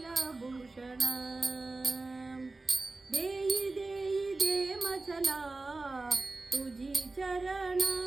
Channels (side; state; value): left; quieter; 3.4 dB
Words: दे मचला तुझी चरण